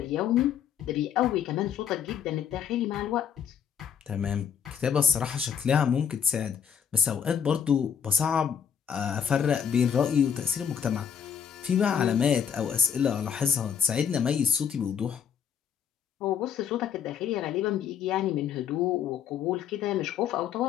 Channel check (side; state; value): right; quieter; 8.0 dB